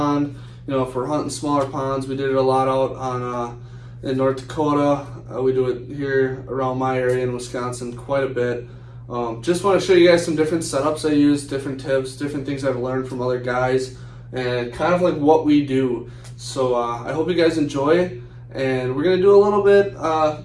You know, if we're hunting smaller ponds, we did it a lot out on in North Dakota. We do it here around my area in Wisconsin quite a bit. Just want to show you guys some different setups I use, different tips, different things I've learned from other guys, and kind of like what we do. So I hope you guys enjoy, and we're going to do a little bit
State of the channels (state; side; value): identical; both; correlation 1.00